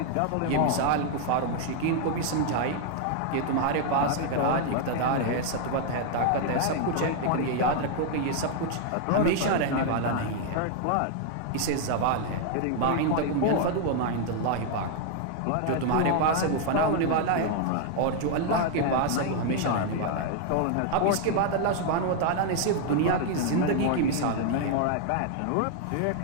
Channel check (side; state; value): both; different; correlation 0.00